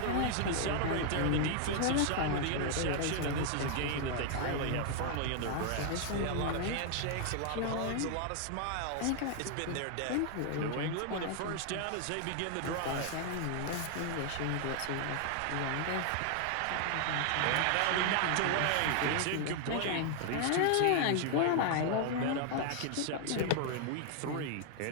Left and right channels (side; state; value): both; different; correlation 0.00